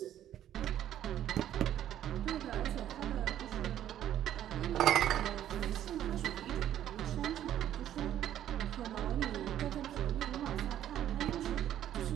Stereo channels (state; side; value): quieter; left; 11.4 dB